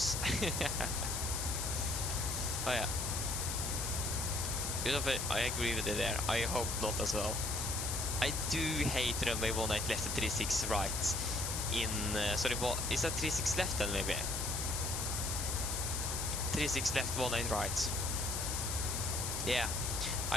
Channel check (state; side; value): noise; left; hiss, 2 dB below the sound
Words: Oh yeah. I agree with you there. I hope not as well. I do hate runway 18 left and 36 right. Sorry, what is that 36 left then maybe? 36 left, 18 right. Yeah,